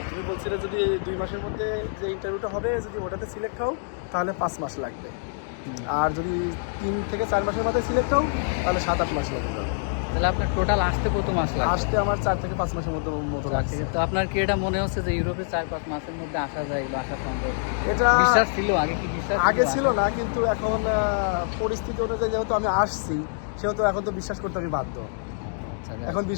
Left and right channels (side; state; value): right; silent; digital silence